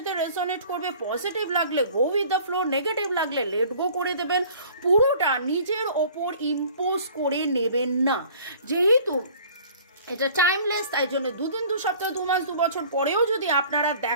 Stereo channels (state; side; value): inverted; both; correlation -0.50